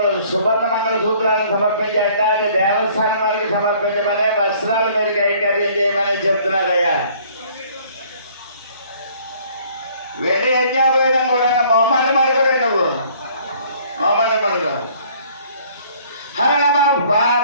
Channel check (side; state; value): both; inverted; correlation -0.57